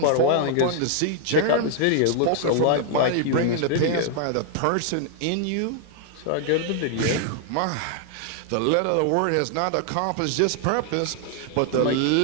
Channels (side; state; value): both; different; correlation 0.00